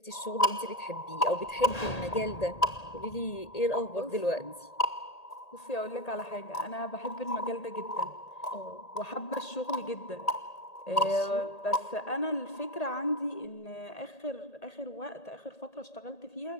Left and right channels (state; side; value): late; right; 1.8 ms